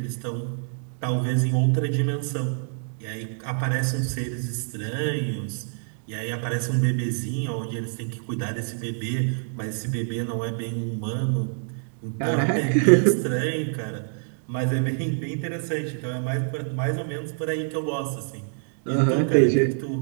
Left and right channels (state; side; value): silent; left; digital silence